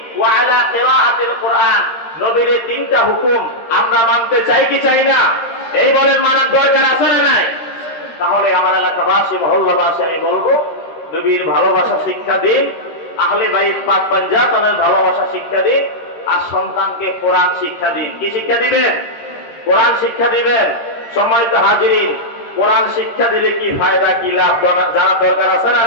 ওয়া আলা কিরাআতিল কুরআন। নবীর এই তিনটা হুকুম আমরা মানতে চাই কি চাই না? এই বলেন, মানার দরকার আছে না নাই? তাহলে আমার এলাকাবাসী, মহল্লাবাসী, আমি বলবো, নবীর ভালোবাসা শিক্ষা দিন, আহলে বাইত পাক পাঞ্জাতনের ভালোবাসা শিক্ষা দিন, আর সন্তানকে কোরআন শিক্ষা দিন। কি শিক্ষা দিবেন? কোরআন শিক্ষা দিবেন। সম্মানিত হাজিরিন, কোরআন শিক্ষা দিলে কি ফায়দা, কি লাভ জানা দরকার আছে না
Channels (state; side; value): late; right; 13 ms